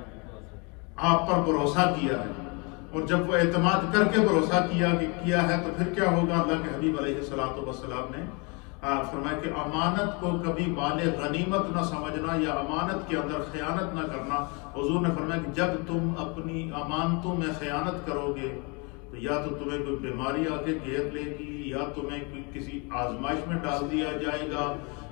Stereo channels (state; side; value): quieter; right; 31.3 dB